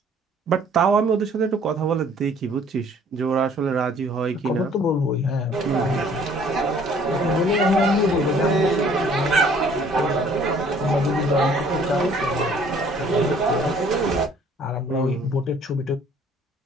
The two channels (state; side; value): normal; both; correlation 0.57